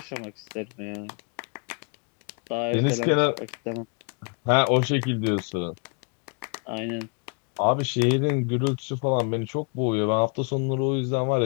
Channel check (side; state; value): right; quieter; 36.9 dB